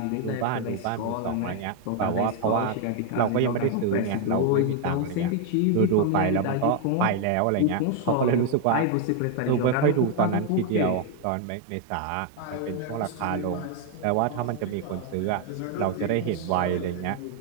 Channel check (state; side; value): different; both; correlation 0.00